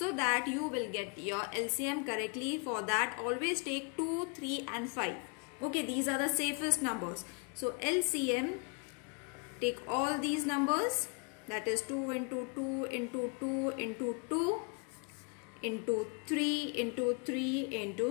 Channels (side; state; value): right; quieter; 35.8 dB